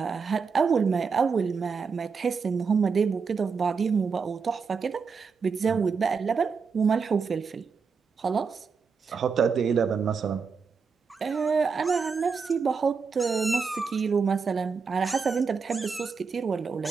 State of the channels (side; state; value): left; quieter; 5.4 dB